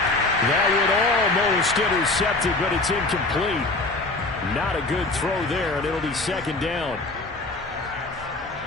That would almost intercepted, but it's incomplete. Not a good throw there, and it'll be 2nd down.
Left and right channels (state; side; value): quieter; right; 3.1 dB